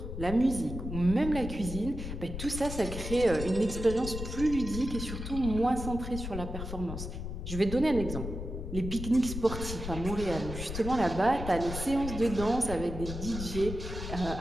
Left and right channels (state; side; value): noise; left; rumble, 6 dB below the sound